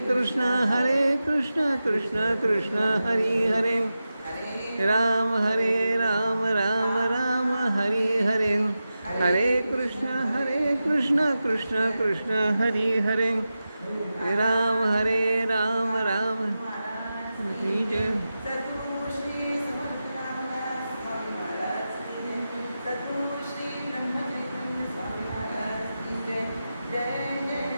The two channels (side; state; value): both; inverted; correlation -0.92